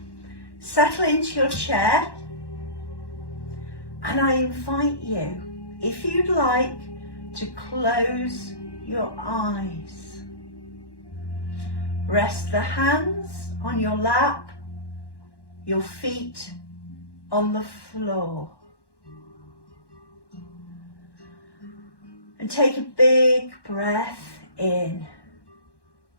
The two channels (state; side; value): late; right; 1.1 ms